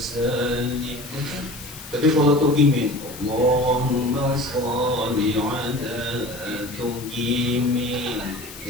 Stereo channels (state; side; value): noise; left; hiss, 14 dB below the sound